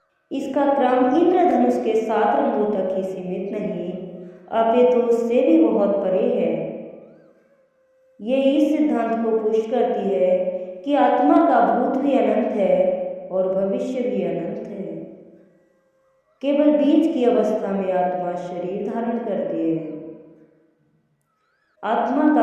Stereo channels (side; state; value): both; identical; correlation 1.00